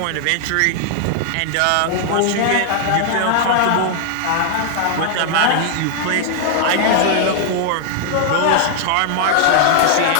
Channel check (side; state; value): both; different; correlation 0.00